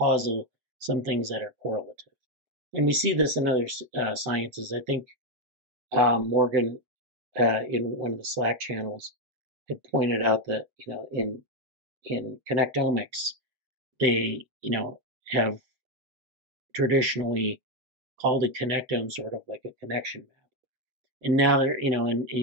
some things that are correlative. And we see this in other sciences. I think Morgan, in one of the Slack channels, had pointed out that, in connectomics, they, have traditionally called a connectome sort of like a connection map. And now they're, and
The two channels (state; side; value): late; left; 7.8 ms